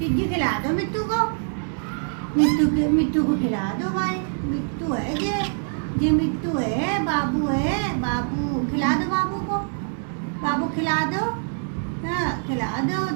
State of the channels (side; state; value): left; silent; 62 dB below the other